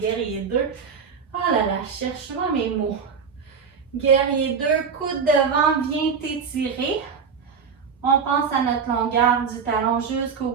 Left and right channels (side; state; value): left; quieter; 6.1 dB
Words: 2. Oh là là, cherche-moi mes mots. Guerrier 2, coude devant, viens t'étirer. On pense à notre longueur du talon jusqu'au